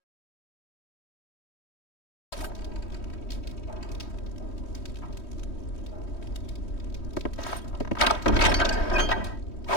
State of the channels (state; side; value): late; right; 3.1 ms